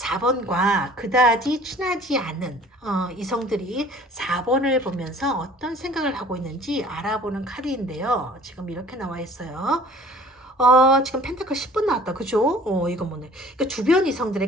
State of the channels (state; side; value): normal; both; correlation 0.50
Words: 그다지 친하지 않은 이성들이 4번을 보면서 어떤 생각을 하고 있는지 알아보는 카드인데요. 지금 이렇게 나와 있어요. 지금 펜타클 10번 나왔다. 그죠? 이거 뭐네. 그러니까 주변